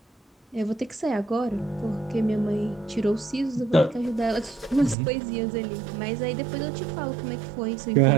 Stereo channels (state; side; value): drops out; left; at 5.0 s